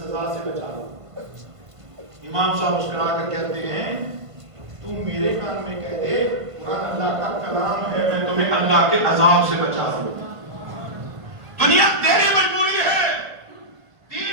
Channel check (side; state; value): left; late; 1.5 ms